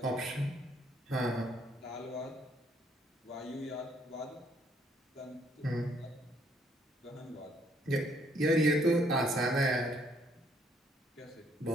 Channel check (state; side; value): normal; both; correlation 0.67